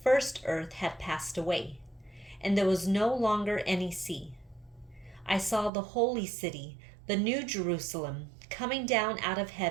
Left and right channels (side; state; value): left; drops out; at 5.7 s